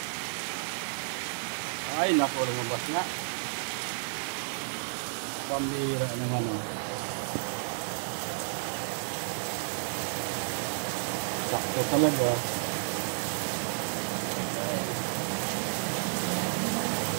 Ay naku, lumabas nga, pambira naman sakto talaga.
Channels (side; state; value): left; silent; digital silence